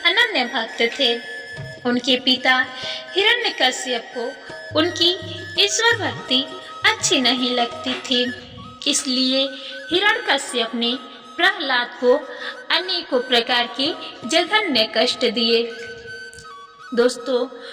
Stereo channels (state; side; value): identical; both; correlation 1.00